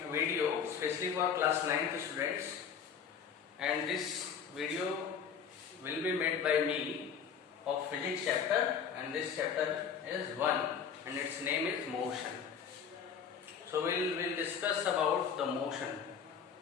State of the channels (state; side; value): quieter; right; 7.2 dB